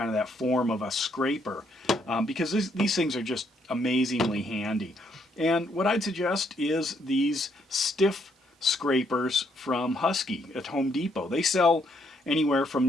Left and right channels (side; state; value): both; normal; correlation 0.72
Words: of that form of a scraper? Because these things are just amazingly handy. And what I'd suggest is these stiff scrapers from Husky at Home Depot. They sell anywhere from